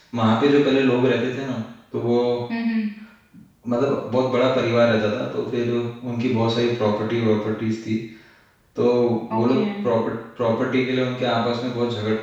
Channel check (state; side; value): identical; both; correlation 1.00